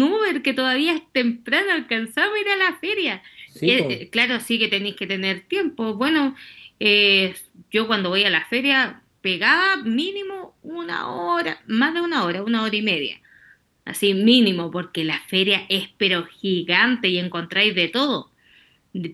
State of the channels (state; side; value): identical; both; correlation 1.00